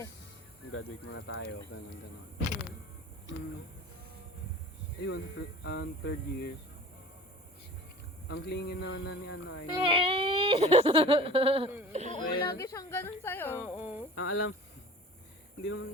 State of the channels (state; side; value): normal; both; correlation 0.40